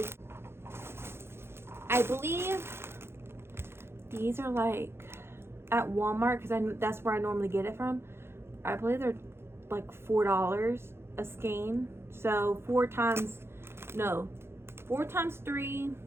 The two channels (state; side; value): late; left; 0.12 ms